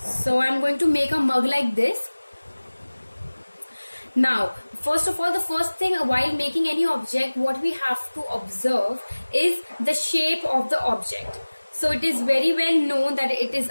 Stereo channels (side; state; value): both; inverted; correlation -1.00